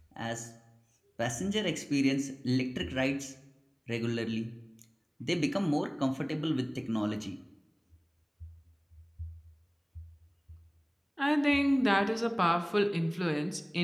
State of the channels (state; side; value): identical; both; correlation 1.00